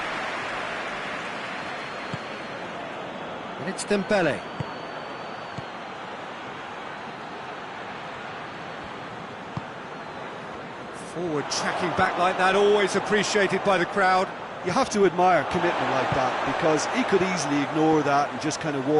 And it's Dembele. Forward tracking back like that, always appreciated by the crowd. You have to admire commitment like that, because he could easily ignore that and just kind of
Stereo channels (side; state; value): both; identical; correlation 1.00